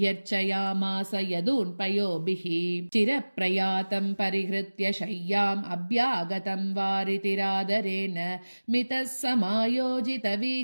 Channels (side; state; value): both; inverted; correlation -1.00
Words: जगामास यदून्पयोभिः चिरप्रयातं परिहृत्य शय्याम् अभ्यागतं वारितिरादरेण मितः